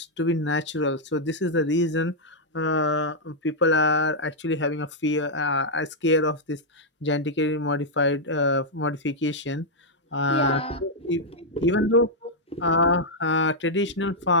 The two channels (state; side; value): normal; both; correlation -0.04